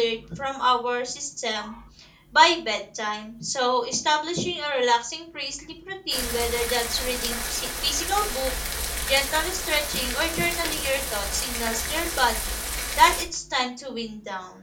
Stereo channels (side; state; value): both; identical; correlation 1.00